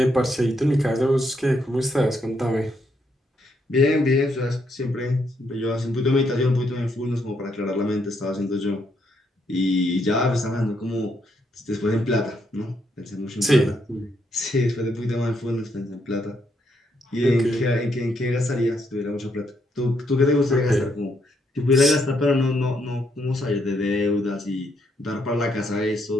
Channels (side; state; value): both; normal; correlation 0.76